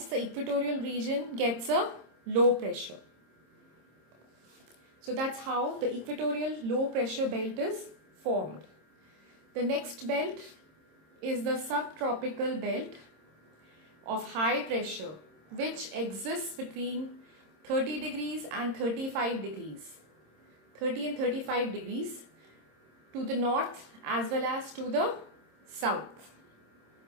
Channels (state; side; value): late; left; 26 ms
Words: the equatorial region gets a low pressure. So that's how the equatorial low pressure belt is formed. The next belt is the subtropical belt of high pressure, which exists between 30 degrees and 35 degrees. 30 and 35 degrees to the north as well as to the south.